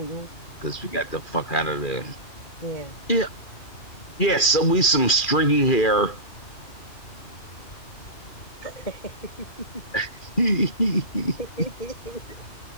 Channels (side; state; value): right; late; 2.4 ms